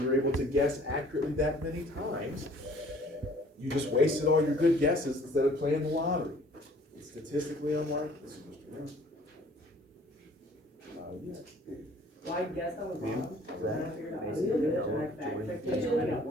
able to guess accurately that many times, you just wasted all your good guesses instead of playing the lottery. It's statistically unlikely. Well, I guess I was wrong. Then I figured out how to do it, and I fact-checked it, and I got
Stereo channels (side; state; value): both; normal; correlation 0.54